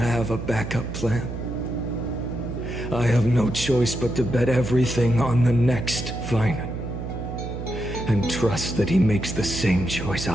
a backup plan. I have no choice but to bet everything on the next Finan. And trust that he makes the same choice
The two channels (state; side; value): noise; right; hum, 6 dB below the sound